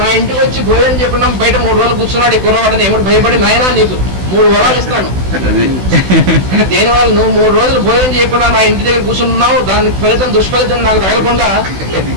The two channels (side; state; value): left; late; 16 ms